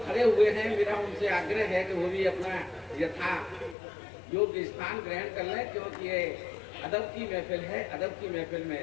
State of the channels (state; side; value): drops out; right; at 3.8 s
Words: खड़े हुए हैं मेरा उनसे आग्रह है कि वो भी अपना यथा योग्य स्थान ग्रहण कर लें, क्योंकि ये अदब की महफिल है। अदब की महफिल